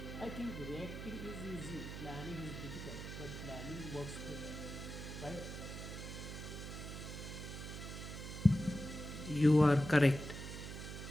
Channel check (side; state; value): right; noise; hum, 8 dB below the sound